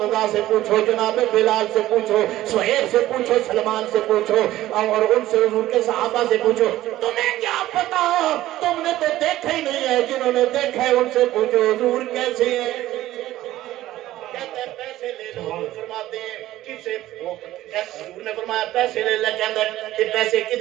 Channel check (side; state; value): left; quieter; 14.9 dB